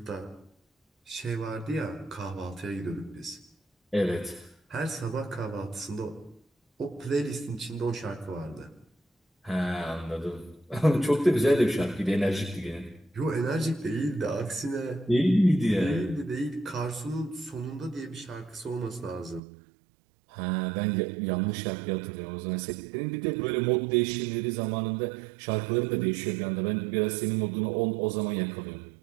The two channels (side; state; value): left; drops out; at 19.4 s